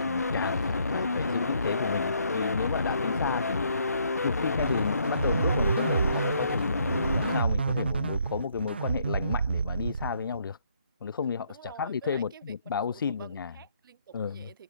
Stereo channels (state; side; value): inverted; both; correlation -0.68